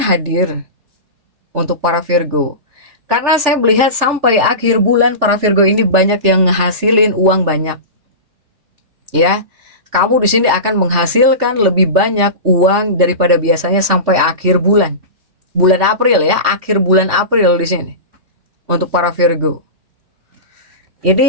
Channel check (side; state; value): left; late; 3.3 ms